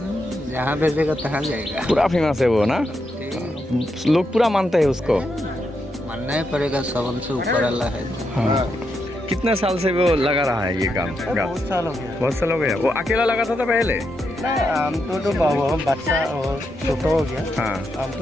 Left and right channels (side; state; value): both; normal; correlation 0.83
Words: जहाँ भेजेगा तहाँ जाएगा। पूरा फेमस है वो ना, लोग पूरा मानते हैं उसको। मानना ही पड़ेगा, सबन से ऊपर अल्लाह है। हाँ। कितने साल से वो लगा रहा है ये काम? बहुत साल हो गया। बहुत साल हो गया। वो अकेला लगा था पहले? हम तो बाबू बच्चा और छोटा हो गया। हाँ, हम